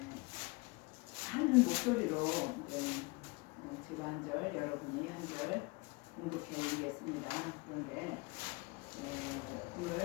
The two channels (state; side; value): quieter; right; 26.6 dB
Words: 한 목소리로 제가 한 절, 여러분이 한 절 공독해 올리겠습니다. 그런데